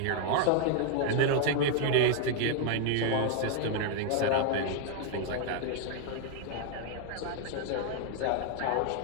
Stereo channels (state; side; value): different; both; correlation 0.00